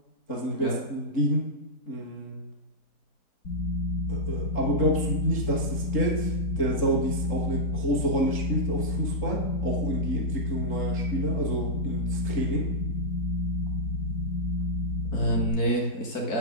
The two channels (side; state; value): right; late; 3.8 ms